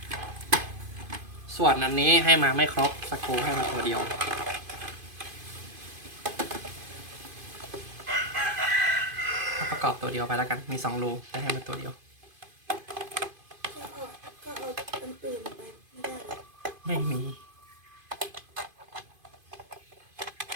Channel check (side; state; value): left; late; 2.5 ms